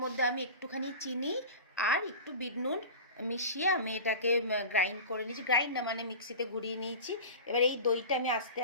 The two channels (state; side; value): inverted; both; correlation -0.33